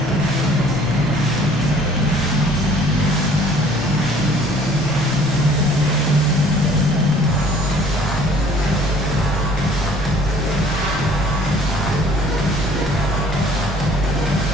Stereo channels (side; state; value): both; normal; correlation 0.55